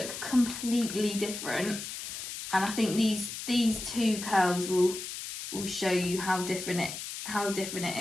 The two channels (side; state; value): left; noise; hiss, 8 dB below the sound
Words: completely different. And I think these two curls will show you how different